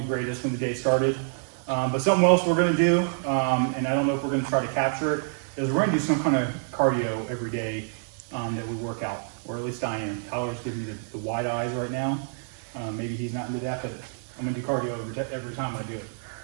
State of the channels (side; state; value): left; silent; 60 dB below the other